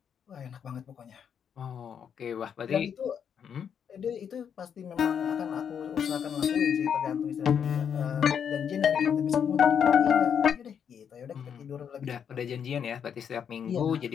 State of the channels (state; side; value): quieter; right; 7.8 dB